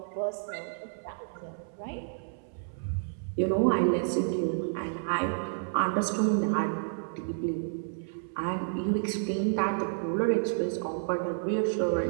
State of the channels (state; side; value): silent; left; 58 dB below the other